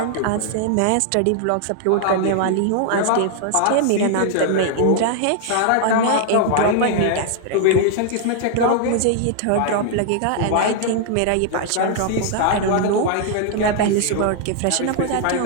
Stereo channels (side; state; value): both; different; correlation 0.00